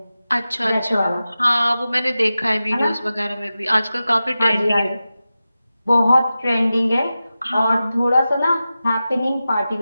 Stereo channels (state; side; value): inverted; both; correlation -0.94